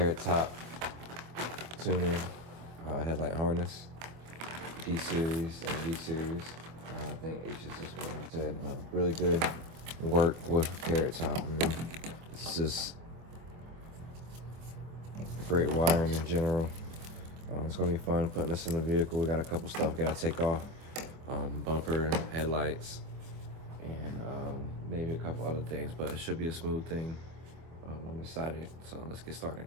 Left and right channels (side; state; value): left; late; 24 ms